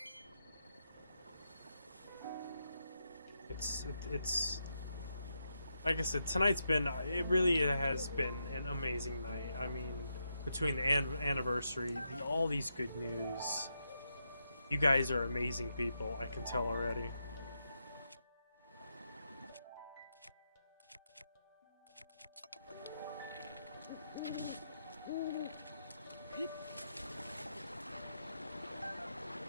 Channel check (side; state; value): both; inverted; correlation -0.84